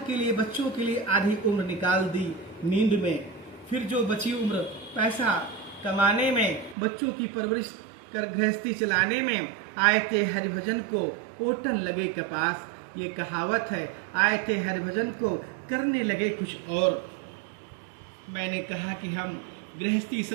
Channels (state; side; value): drops out; left; at 6.8 s